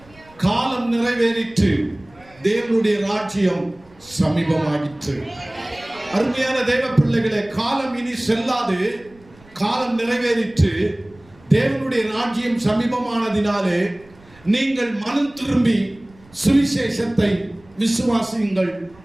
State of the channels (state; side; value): noise; right; rumble, 27 dB below the sound